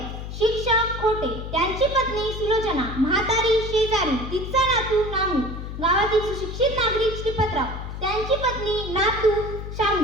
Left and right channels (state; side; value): noise; left; hum, 8 dB below the sound